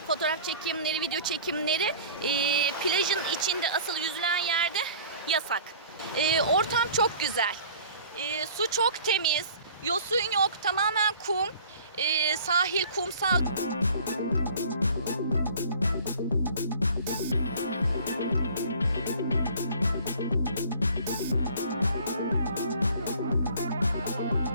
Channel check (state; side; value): inverted; both; correlation -0.47